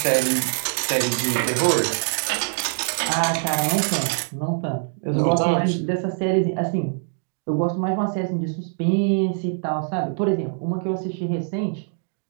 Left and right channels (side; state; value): left; silent; 63 dB below the other